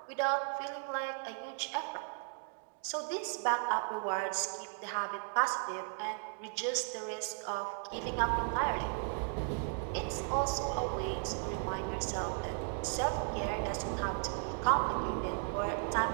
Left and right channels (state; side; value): silent; left; 54 dB below the other